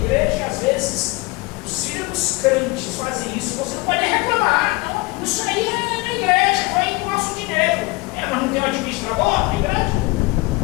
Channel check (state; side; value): quieter; right; 22.9 dB